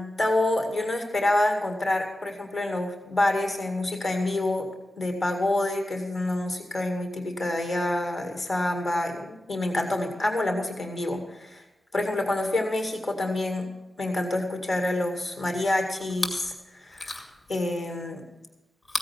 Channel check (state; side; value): normal; both; correlation 0.92